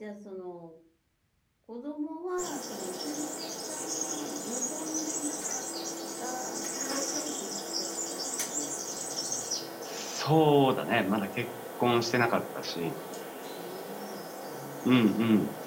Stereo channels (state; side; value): identical; both; correlation 1.00